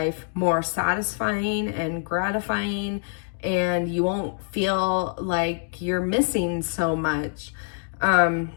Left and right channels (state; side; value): silent; right; digital silence